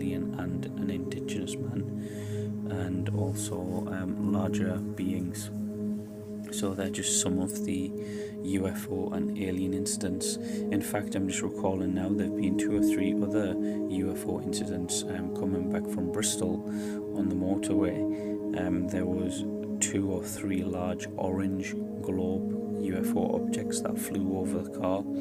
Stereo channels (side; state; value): both; identical; correlation 1.00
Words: and an indigenous man, and also larger beings. So they're just some of the UFO and alien incidents. In fact, I'm just recalling now, there have been 2 or 3 other UFO incidents coming back from Bristol on the motorway. There was 2 or 3 large orange globe UFO objects that flew over the car,